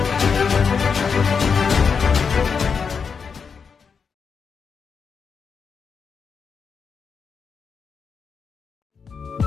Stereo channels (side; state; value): right; quieter; 5.9 dB